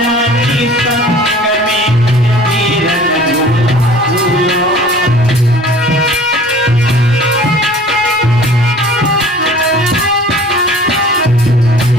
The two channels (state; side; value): normal; both; correlation 0.47